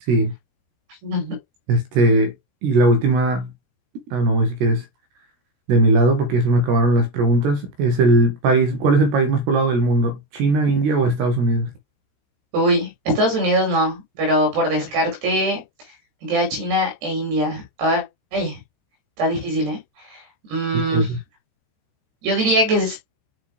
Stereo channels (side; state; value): left; late; 13 ms